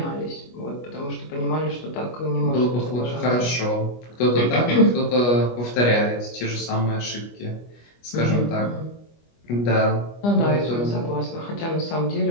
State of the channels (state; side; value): late; right; 25 ms